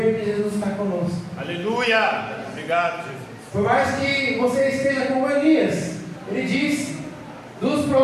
que Jesus está conosco. Aleluia. Obrigado, Jesus. Por mais que você esteja como Elias, ele disse: dos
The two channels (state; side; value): identical; both; correlation 1.00